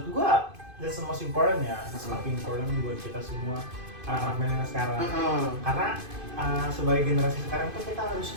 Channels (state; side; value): late; left; 2.5 ms